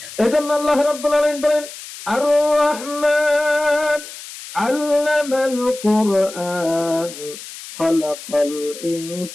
এজন্য আল্লাহ রাব্বুল আলামিন বলেন, আর রহমান আল্লামাল কুরআন খালাকাল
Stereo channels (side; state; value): left; noise; hiss, 13 dB below the sound